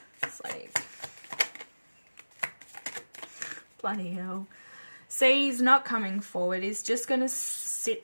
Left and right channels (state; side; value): inverted; both; correlation -1.00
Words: It's like, bloody hell. See, he's not coming forward. He's just going to